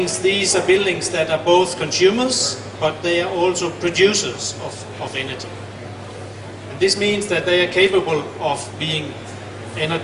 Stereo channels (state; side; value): identical; both; correlation 1.00